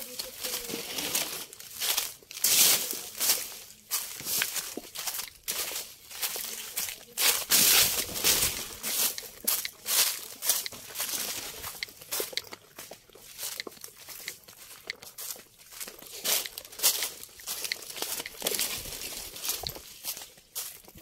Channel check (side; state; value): both; identical; correlation 1.00